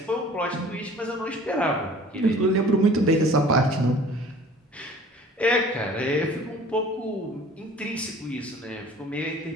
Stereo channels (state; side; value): normal; both; correlation 0.48